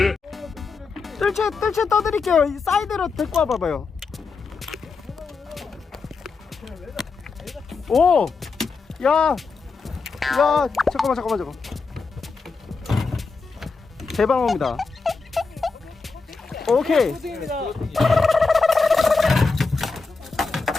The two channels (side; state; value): right; quieter; 4.4 dB